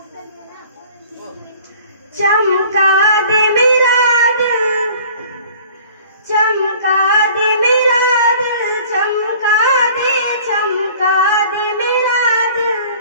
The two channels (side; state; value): both; inverted; correlation -0.49